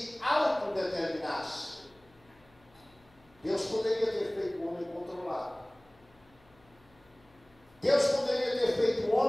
autodeterminasse. Deus poderia ter feito o homem controlado. Deus poderia ter feito o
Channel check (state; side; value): noise; left; hum, 30 dB below the sound